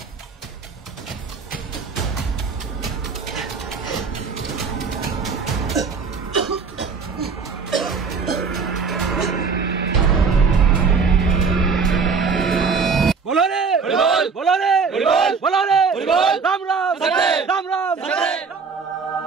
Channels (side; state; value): left; quieter; 5.2 dB